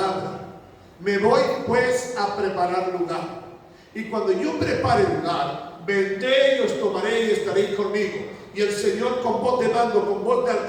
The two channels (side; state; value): both; identical; correlation 1.00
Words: Me voy pues a preparar lugar. Y cuando yo prepare lugar, vendré y os tomaré y estaréis conmigo. Y el Señor con voz de mando, con voz de